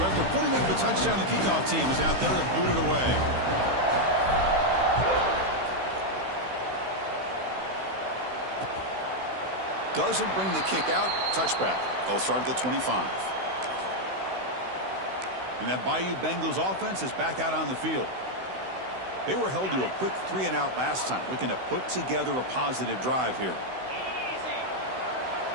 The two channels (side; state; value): left; late; 16 ms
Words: after putting up the touchdown, the kickoff team is out there to boot it away. Doesn't bring the kick out. Touchback. They'll start at the 25. And that Bayou Bengals offense is back out on the field. They were held to a quick 3-and-out last time, looking to put together a positive drive here.